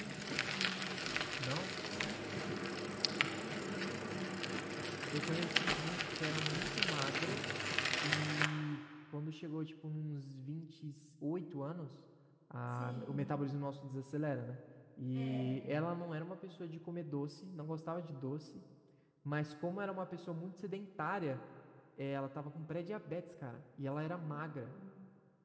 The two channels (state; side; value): identical; both; correlation 1.00